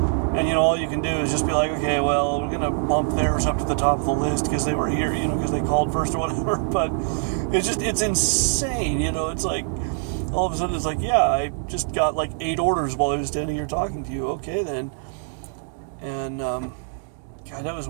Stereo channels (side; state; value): left; silent; 63 dB below the other